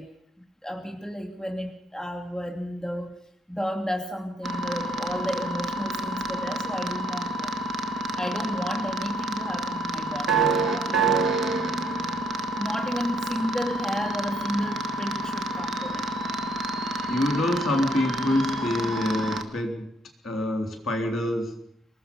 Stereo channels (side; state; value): both; normal; correlation 0.68